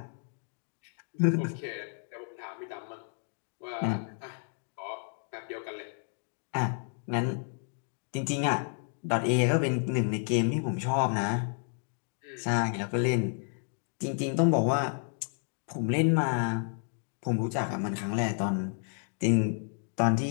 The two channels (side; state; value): right; silent; 56 dB below the other